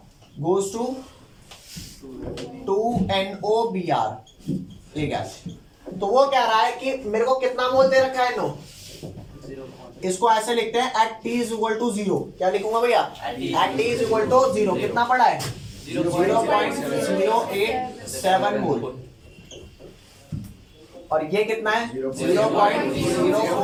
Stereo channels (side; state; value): both; identical; correlation 1.00